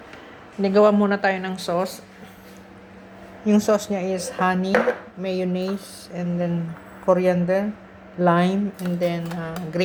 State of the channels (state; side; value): identical; both; correlation 1.00